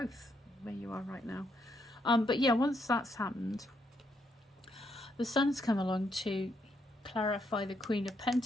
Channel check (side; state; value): both; normal; correlation 0.76